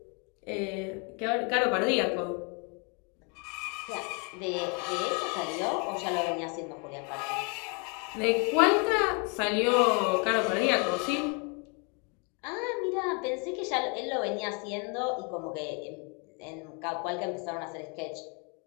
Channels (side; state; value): right; quieter; 34.9 dB